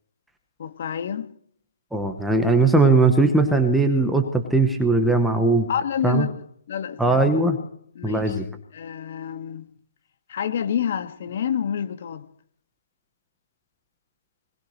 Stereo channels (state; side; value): normal; both; correlation 0.31